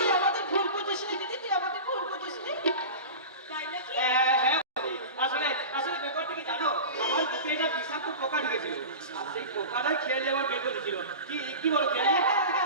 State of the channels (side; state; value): both; inverted; correlation -0.30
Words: আমাদের ভুল বুঝিস নি দিদি, তুই আমাদের ভুল বুঝিস নি। তাই নাকি? হ্যাঁ বৌদি, আসলে ব্যাপারটা কি জানো? আমার বুকে একটা বিষাক্ত পোকা ঢুকেছিল, আর সেই পোকাটাই খেয়ে দিয়ে আমার বের করে দিয়েছিল। কি বলো খেয়ে?